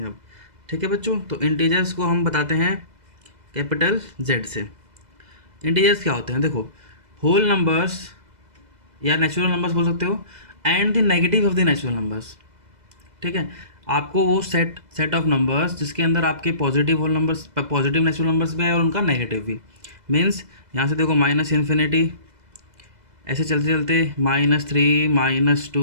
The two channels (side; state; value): left; late; 2.0 ms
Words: हैं अब। ठीक है बच्चों, तो इंटीजर्स को हम बताते हैं कैपिटल जेड से। इंटीजर्स क्या होते हैं? देखो, होल नंबर्स या नेचुरल नंबर्स बोल सकते हो, and the negative of the natural numbers. ठीक है, आपको वो सेट ऑफ नंबर्स जिसके अंदर आपके positive whole numbers, positive natural numbers भी है और उनका नेगेटिव भी। मीन्स यहाँ से देखो, माइनस इन्फिनिटी, ऐसे चलते चलते -3,